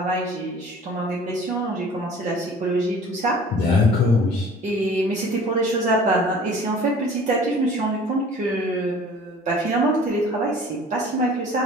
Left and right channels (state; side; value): normal; both; correlation 0.47